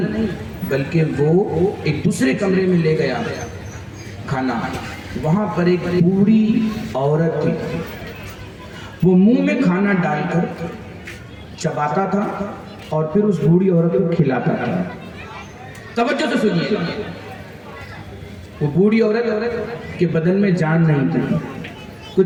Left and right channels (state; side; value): identical; both; correlation 1.00